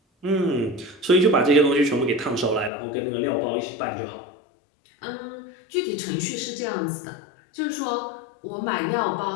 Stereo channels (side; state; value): right; drops out; at 2.7 s